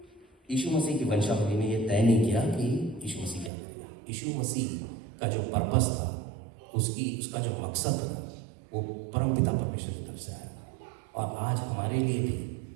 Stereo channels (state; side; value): drops out; left; at 3.5 s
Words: यीशु मसीह की वंशावली ने ये तय नहीं किया कि यीशु मसीह क्या करेगा। यीशु मसीह का जो पर्पस था, उसका जो मकसद था, वो परमपिता परमेश्वर की तरफ से आया। और आज हमारे लिए भी